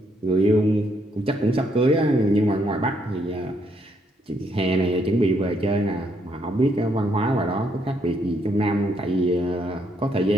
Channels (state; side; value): normal; both; correlation 0.73